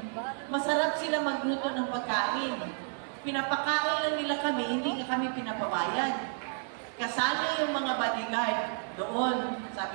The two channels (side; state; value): left; silent; 55 dB below the other